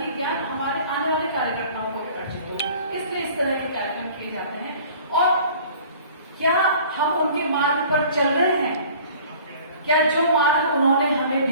ज्ञान हमारे आने वाले कार्यकर्ताओं को भी अर्जित हो। इसलिए इस तरह के कार्यक्रम किए जाते हैं। और क्या हम उनके मार्ग पर चल रहे हैं? क्या जो मार्ग उन्होंने हमें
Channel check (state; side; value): inverted; both; correlation -0.48